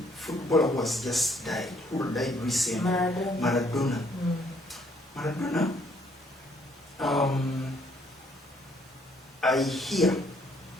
footballer who has just died, who died recently, Maradona. Maradona, I hear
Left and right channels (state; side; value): normal; both; correlation 0.66